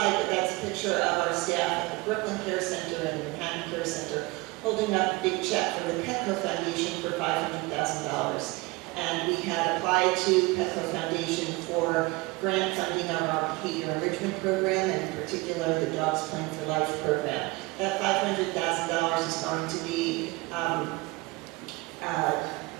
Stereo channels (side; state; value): left; quieter; 23.7 dB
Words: but that's a picture of our staff at the Brooklyn Care Center and the Manhattan Care Center holding up a big check for the Petco Foundation for $500,000. And we had applied to Petco Foundation for grant funding of our behavior enrichment program, and in particular, the Dogs Playing for Life program. That $500,000 is going to be